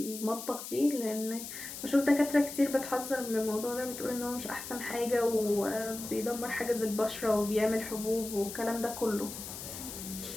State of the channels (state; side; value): noise; left; hiss, 9 dB below the sound